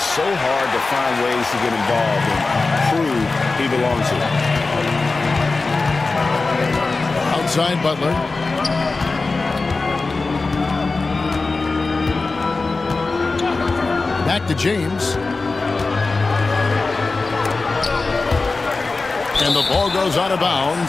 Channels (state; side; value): quieter; right; 3.7 dB